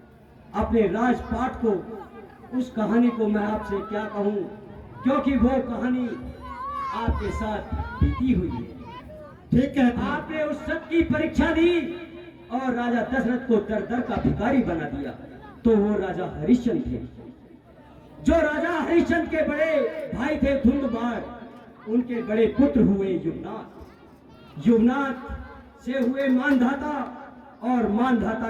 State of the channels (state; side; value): identical; both; correlation 1.00